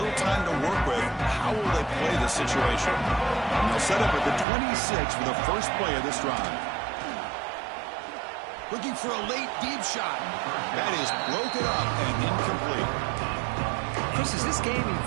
little time to work with. How will they play this situation? And they'll set up at the 26 for the first play of this drive. Looking for a late deep shot. That is broken up and incomplete. Chris, as this game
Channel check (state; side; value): drops out; left; at 4.5 s